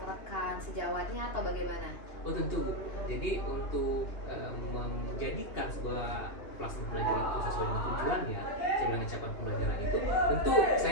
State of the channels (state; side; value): late; right; 2.8 ms